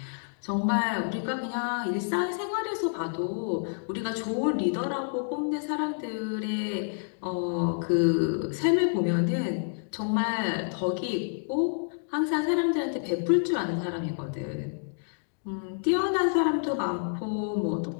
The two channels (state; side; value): silent; right; digital silence